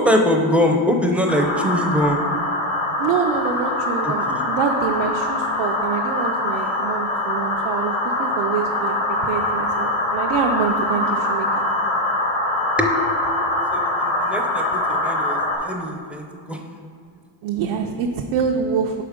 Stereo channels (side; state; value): both; normal; correlation 0.11